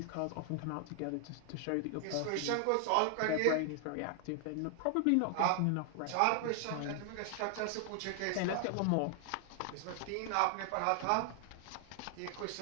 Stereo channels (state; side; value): different; both; correlation 0.00